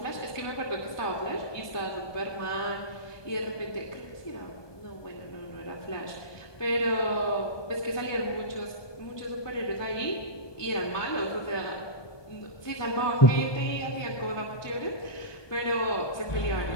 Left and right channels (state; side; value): late; right; 1.2 ms